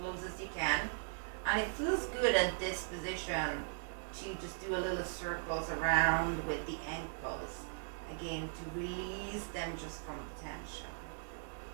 as you can. And it feels good at this position to just do a little circles around with the ankles. Again, to release them just from tension.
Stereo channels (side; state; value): left; silent; digital silence